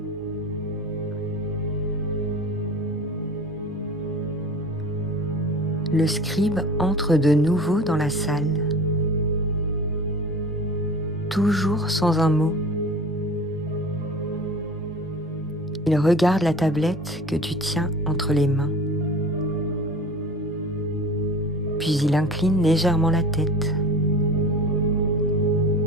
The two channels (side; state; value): both; normal; correlation 0.39